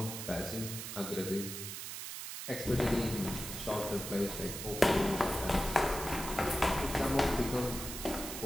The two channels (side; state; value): right; noise; hiss, 7 dB below the sound